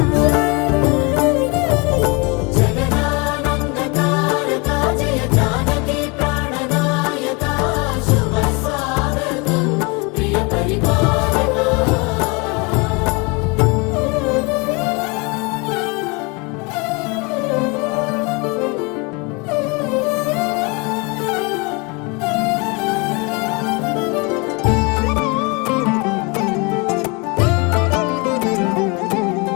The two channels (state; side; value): quieter; right; 29.2 dB